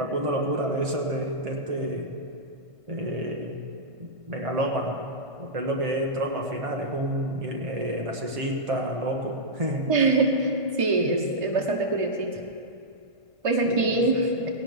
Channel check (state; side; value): late; left; 1.5 ms